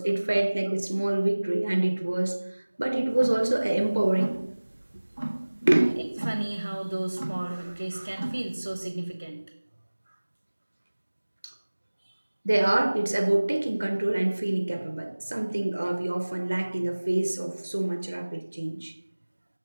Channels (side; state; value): both; inverted; correlation -1.00